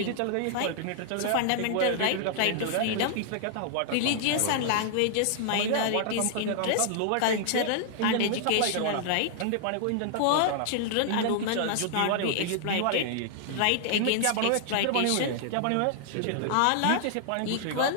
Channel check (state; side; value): different; both; correlation -0.01